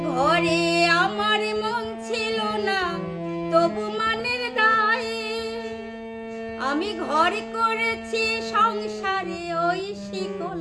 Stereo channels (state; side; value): identical; both; correlation 1.00